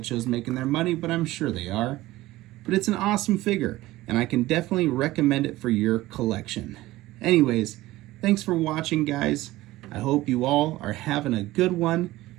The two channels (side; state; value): left; quieter; 17.4 dB